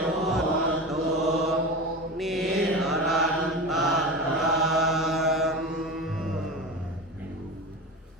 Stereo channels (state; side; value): normal; both; correlation 0.27